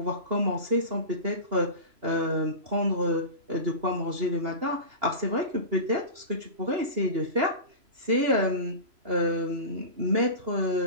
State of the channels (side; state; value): left; late; 3.0 ms